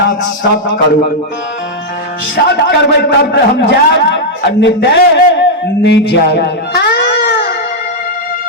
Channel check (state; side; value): normal; both; correlation -0.03